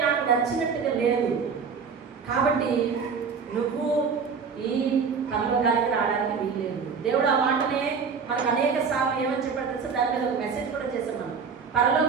నాకు నచ్చినట్టుగా లేదు. కాబట్టి నువ్వు ఈ పరలోకానికి రావడానికి వీల్లేదు. దేవుడు ఆ మాటనే మనకు అనేక సార్లు ఏమని చెప్పాడు తెలుసా? దాని మీద ఒక మెసేజ్ కూడా చేసాం మనం.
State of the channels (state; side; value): quieter; left; 5.8 dB